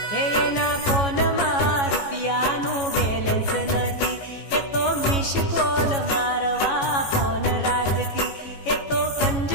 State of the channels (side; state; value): right; late; 14 ms